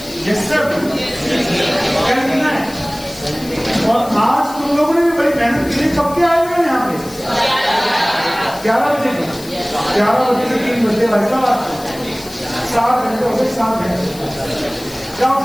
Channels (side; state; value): left; noise; hiss, 17 dB below the sound